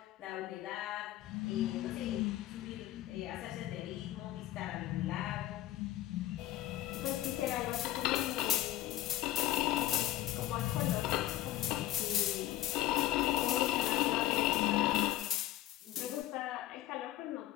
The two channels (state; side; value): quieter; right; 14.7 dB